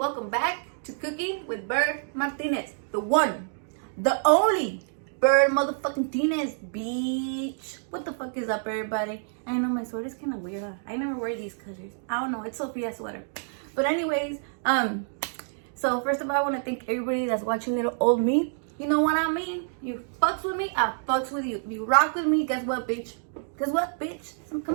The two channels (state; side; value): silent; left; digital silence